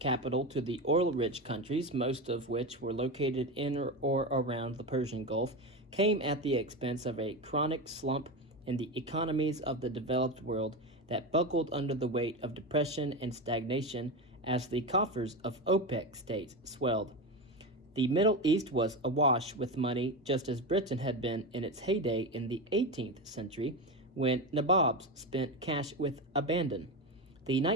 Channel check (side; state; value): both; normal; correlation 0.19